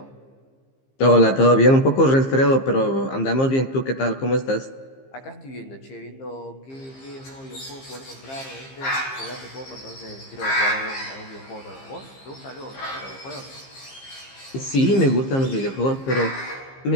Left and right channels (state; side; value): late; right; 15 ms